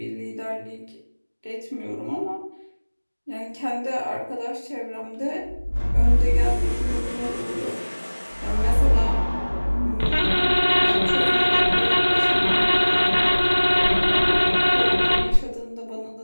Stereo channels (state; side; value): inverted; both; correlation -1.00